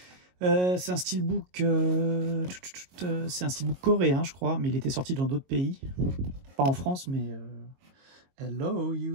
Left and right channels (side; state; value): left; late; 22 ms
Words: C'est un steelbook, coréen, je crois, mais il était sorti dans d'autres pays, pas en France, mais hello